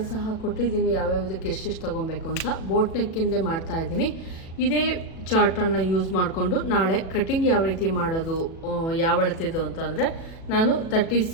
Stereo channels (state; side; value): late; right; 37 ms